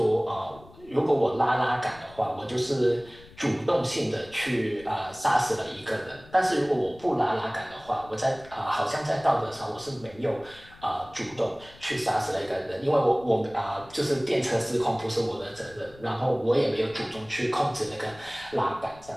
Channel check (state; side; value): noise; left; rumble, 22 dB below the sound